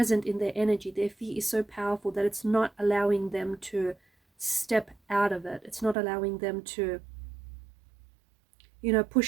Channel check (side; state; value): left; drops out; at 6.0 s